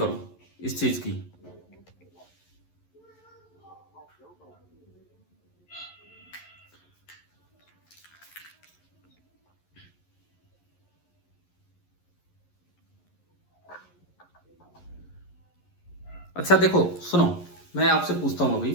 इस चीज की। अच्छा देखो सुनो, मैं आपसे पूछता हूं अभी,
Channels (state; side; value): late; right; 11 ms